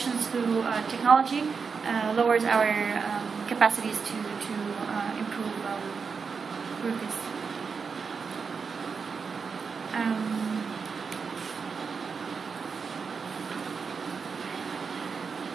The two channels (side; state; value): left; quieter; 5.5 dB